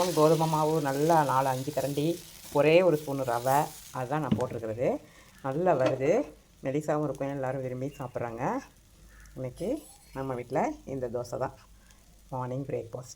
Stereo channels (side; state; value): both; identical; correlation 1.00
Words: கோதுமை மாவு நல்லா 4-5 கரண்டி, ஒரே ஒரு ஸ்பூன் ரவை, அதுதான் நான் போட்டிருக்கிறது. நல்லா வருது, மெலிசாவும் இருக்கும், எல்லோரும் விரும்பி சாப்பிட்றாங்க. இன்றைக்கி நம்ம வீட்டில் இந்த தோசை தான் மார்னிங்